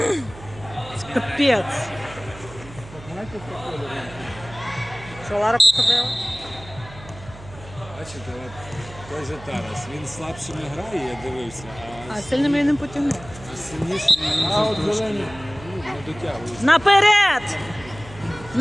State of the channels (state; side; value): noise; right; hum, 17 dB below the sound